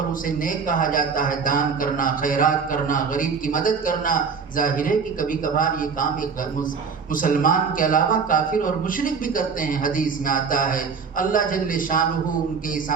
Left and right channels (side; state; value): left; quieter; 5.7 dB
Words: اسے نیک کہا جاتا ہے، دان کرنا، خیرات کرنا، غریب کی مدد کرنا۔ ظاہر ہے کہ کبھی کبھار یہ کام ایک مسلمان کے علاوہ کافر اور مشرک بھی کرتے ہیں، حدیث میں آتا ہے اللہ جل شانہ ان کے اس